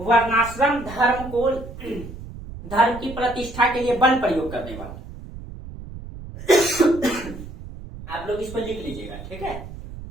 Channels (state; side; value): noise; right; rumble, 13 dB below the sound